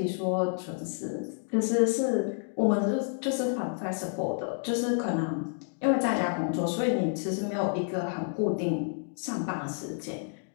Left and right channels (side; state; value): right; silent; 58 dB below the other